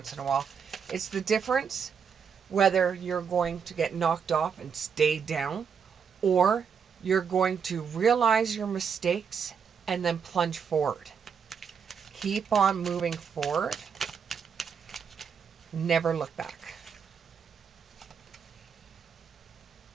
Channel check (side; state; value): left; quieter; 6.7 dB